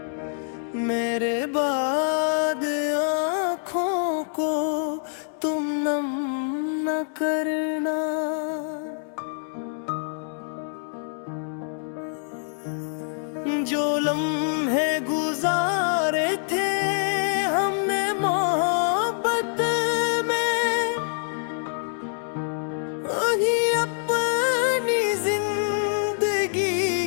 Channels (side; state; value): right; silent; 61 dB below the other